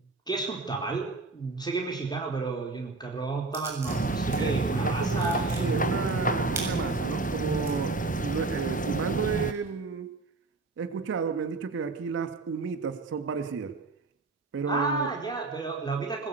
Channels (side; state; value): left; quieter; 3.5 dB